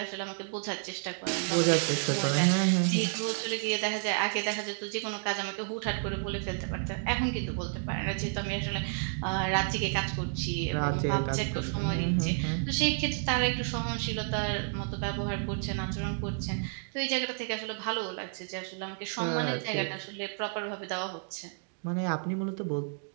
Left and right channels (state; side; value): silent; left; 57 dB below the other